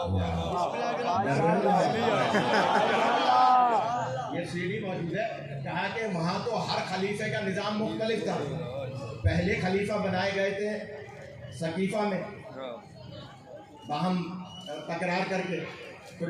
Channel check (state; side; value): identical; both; correlation 1.00